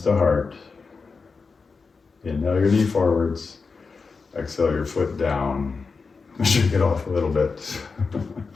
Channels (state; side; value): quieter; right; 4.7 dB